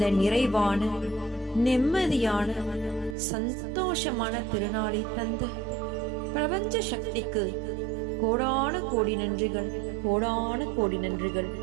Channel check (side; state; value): left; drops out; at 3.2 s